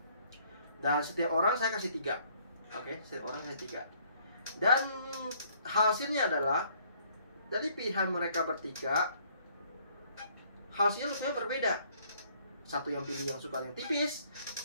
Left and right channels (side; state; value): both; inverted; correlation -0.63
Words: Dan setiap orang saya kasih 3. Oke, setiap orang kasih 3. Dan hasilnya adalah dari pilihan mereka bertiga, hasilnya rupanya berbeda. Satu yang pilih yang suka yang tipis,